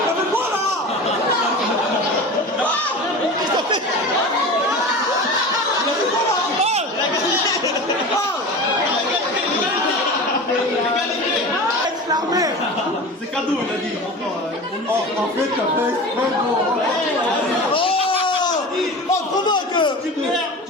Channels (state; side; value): normal; both; correlation 0.32